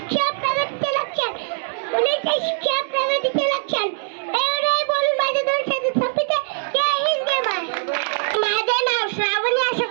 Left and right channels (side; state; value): left; silent; digital silence